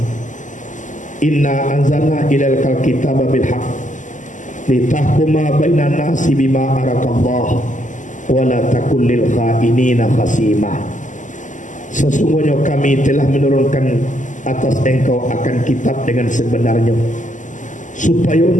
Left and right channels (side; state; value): right; late; 0.37 ms